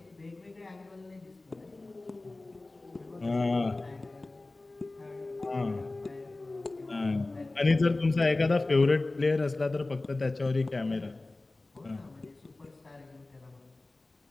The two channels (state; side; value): quieter; right; 3.0 dB